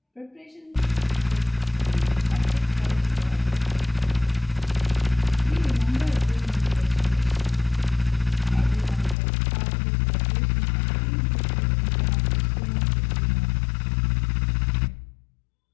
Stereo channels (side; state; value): right; drops out; at 9.2 s